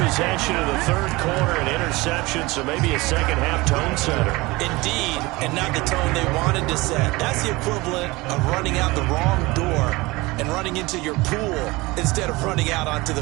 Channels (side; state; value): left; quieter; 22.2 dB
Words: of the 3rd quarter, an interception, so maybe a second-half tone setter. Indeed, and not the tone they wanted to set. That's the equivalent of running out the wrong door and running into your pool instead of running out onto